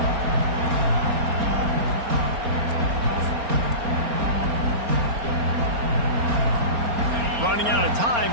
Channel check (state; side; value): late; left; 4.3 ms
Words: Running out of time